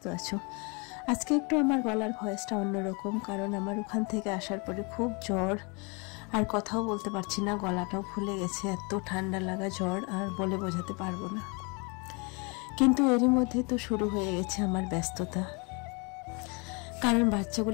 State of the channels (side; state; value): right; quieter; 31.2 dB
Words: আছো। আজকে একটু আমার গলার ভয়েসটা অন্যরকম, কারণ আমার ওখান থেকে আসার পরে খুব জ্বর, আর কথাও বলতে পারছি না, গলাটাও ফুলে গেছে, এত ঠান্ডা লাগা জ্বর আর বলে বোঝাতে পারবো না। কিন্তু এরই মধ্যে তো শুরু হয়ে গেছে আমার ব্যস্ততা, কারণ